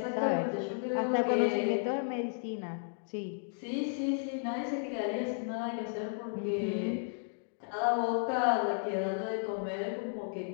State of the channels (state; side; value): silent; right; digital silence